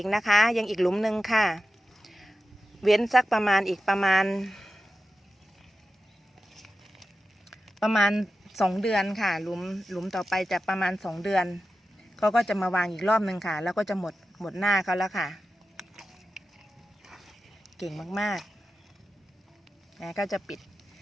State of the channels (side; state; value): both; normal; correlation 0.92